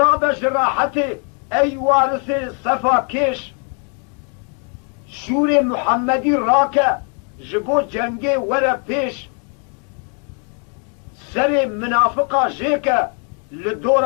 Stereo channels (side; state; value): right; quieter; 39.6 dB